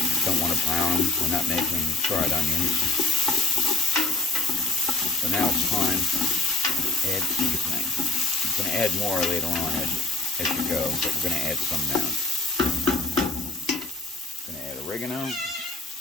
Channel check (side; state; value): right; quieter; 3.1 dB